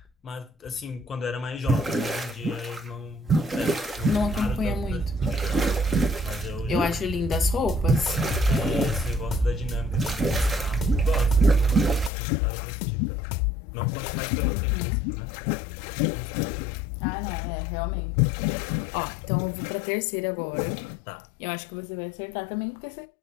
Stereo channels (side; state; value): right; drops out; at 12.1 s